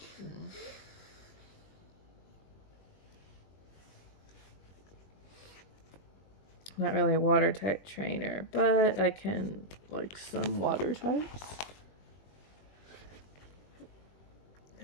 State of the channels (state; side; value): late; right; 21 ms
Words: Not really a water type trainer, but I can like some water types.